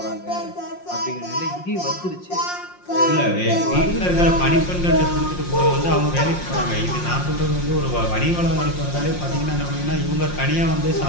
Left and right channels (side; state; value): right; late; 5.6 ms